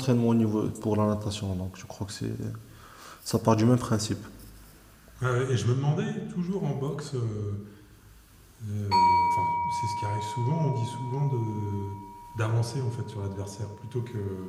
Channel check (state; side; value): identical; both; correlation 1.00